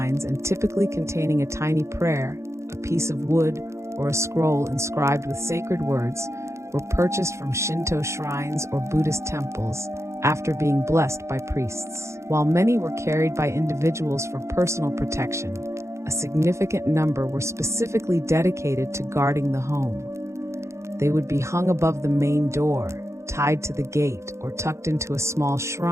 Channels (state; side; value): late; left; 0.14 ms